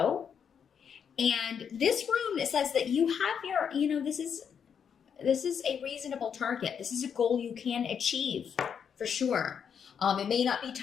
And this rune, it says that you have your, this is a reasonable target. This is a goal you can achieve for sure. It may not be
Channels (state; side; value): quieter; right; 7.4 dB